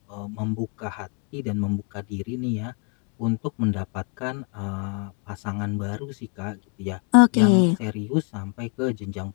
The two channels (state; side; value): quieter; right; 37.5 dB